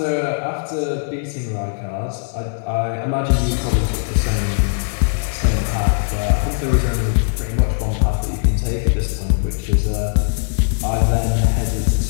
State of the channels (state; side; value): silent; right; digital silence